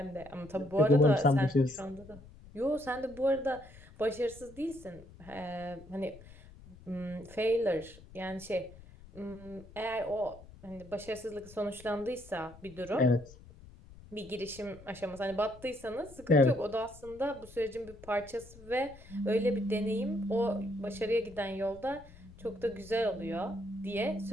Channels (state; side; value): noise; left; rumble, 19 dB below the sound